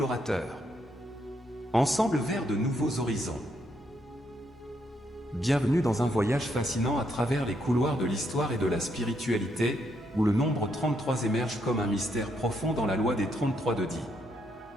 Ensemble vers de nouveaux horizons. Bienvenue dans un voyage fascinant à travers les couloirs de l'histoire et de la spiritualité, où le nombre 33 émerge comme un mystère profond dans la loi des 33 de Di.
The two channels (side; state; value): both; normal; correlation 0.76